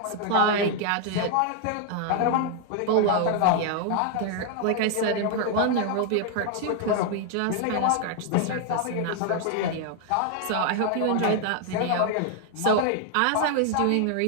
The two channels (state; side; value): different; both; correlation 0.00